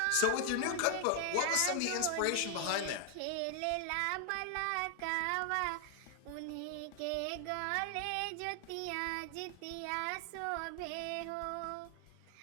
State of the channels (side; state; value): both; different; correlation 0.00